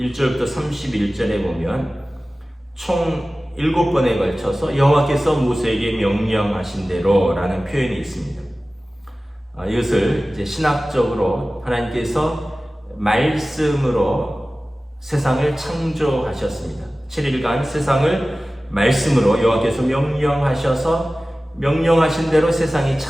31절에 보면 총 7번에 걸쳐서 여호와께서 모세에게 명령하신 대로 라는 표현이 있습니다. 이것을 이제 신학적으로 하나님께서 말씀으로 세상을 창조하셨습니다. 7일간 세상을 말씀으로 여호와께서 명령하셔서 명령하신 대로 세상이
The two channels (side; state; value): both; normal; correlation 0.97